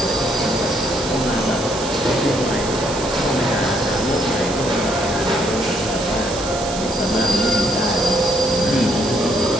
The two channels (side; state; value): right; noise; hiss, 9 dB below the sound